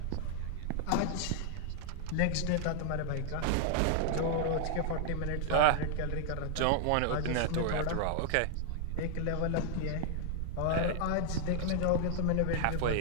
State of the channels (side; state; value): both; different; correlation 0.00